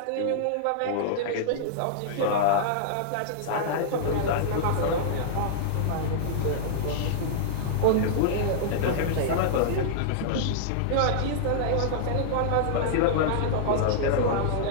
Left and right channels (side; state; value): both; different; correlation -0.02